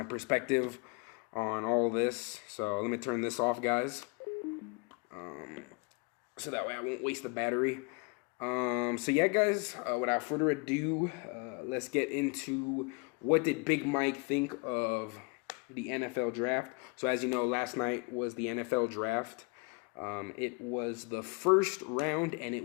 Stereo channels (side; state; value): right; quieter; 31.8 dB